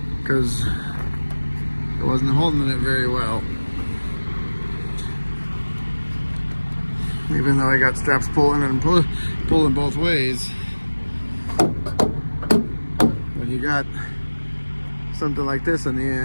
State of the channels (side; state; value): both; inverted; correlation -1.00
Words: because it wasn't holding it very well. Even though I got straps pulling and pulling both ways, when you got something like this in the